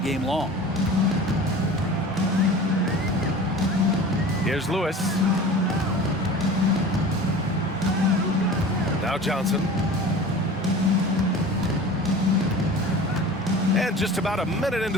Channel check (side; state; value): both; normal; correlation 0.39